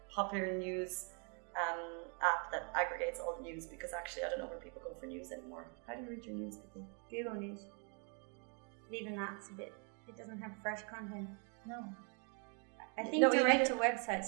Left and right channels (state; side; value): quieter; left; 39.0 dB